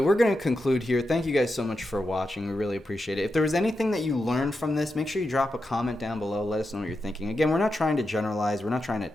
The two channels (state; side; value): normal; both; correlation 0.88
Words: going to conclude here. Thank you guys so much for watching. We really appreciate it. If there was anything that you learned from this, make sure you drop a comment down below. Let us know what you're thinking. Again, we're not trying to generalize. We're not trying to